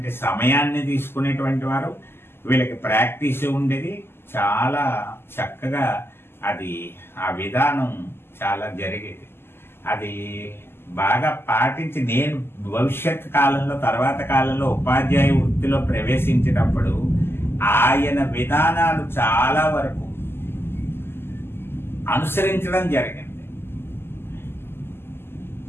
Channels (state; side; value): late; right; 0.12 ms